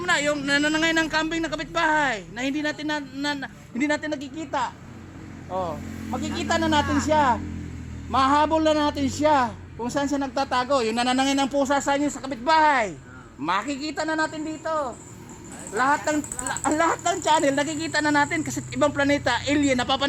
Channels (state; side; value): identical; both; correlation 1.00